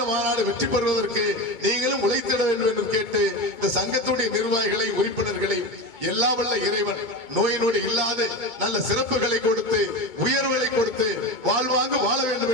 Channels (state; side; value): late; right; 2.2 ms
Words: மாநாடு வெற்றி பெறுவதற்கு நீங்களும் உழைத்திட வேண்டும் என்று கேட்டு இந்த சங்கத்துடைய நிர்வாகிகளை உறுப்பினர்களை எல்லா வல்ல இறைவன் நோய் நொடி இல்லாத நல்ல சிறப்புகளை கொடுத்து உயர்வுகளை கொடுத்து வாழ்வாங்கு வாழ வேண்டும்